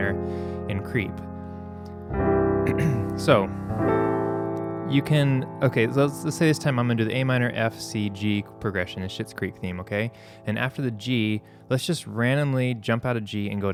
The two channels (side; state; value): both; identical; correlation 1.00